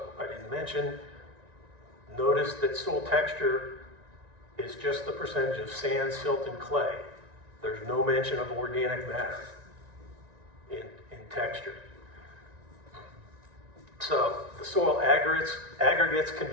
I didn't mention, notice that soil texture is just the percentage of sand, silt, and clay. There's no mention of organic matter in texture. So the soil aggregates can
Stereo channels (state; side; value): late; left; 1.9 ms